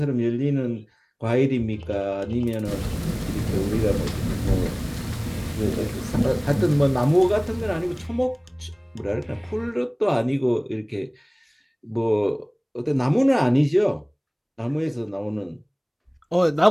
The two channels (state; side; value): identical; both; correlation 1.00